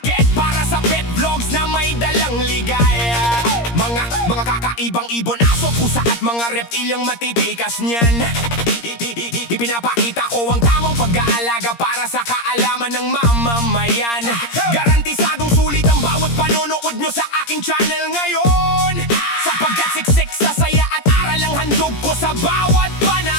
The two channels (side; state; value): right; late; 17 ms